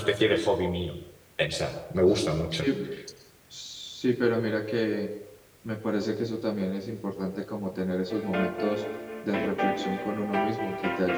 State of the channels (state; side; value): identical; both; correlation 1.00